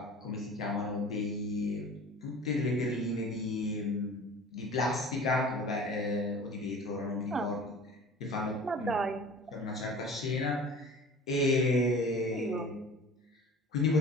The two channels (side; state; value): both; normal; correlation 0.42